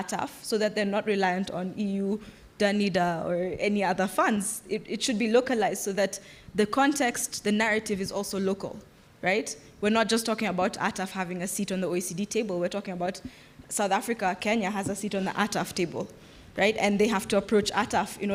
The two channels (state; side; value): identical; both; correlation 1.00